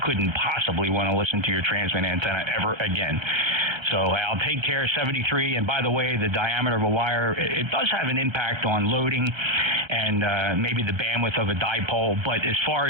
couldn't possibly want to listen to your transmit antenna ever again. So I'll take care of 73. And by the way, the diameter of a wire, it does have an impact on loading and maybe the bandwidth of a dipole. But as far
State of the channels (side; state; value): left; late; 1.3 ms